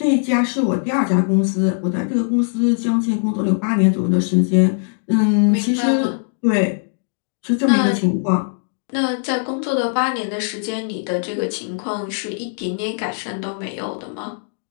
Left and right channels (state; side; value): silent; right; digital silence